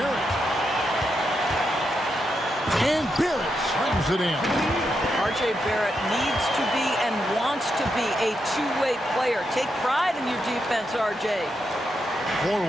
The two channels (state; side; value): normal; both; correlation 0.83